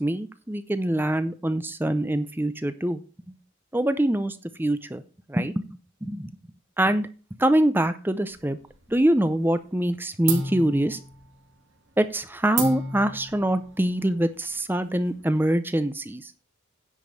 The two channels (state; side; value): normal; both; correlation 0.88